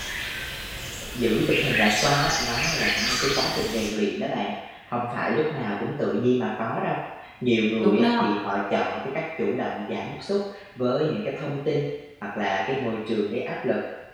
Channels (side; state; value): both; identical; correlation 1.00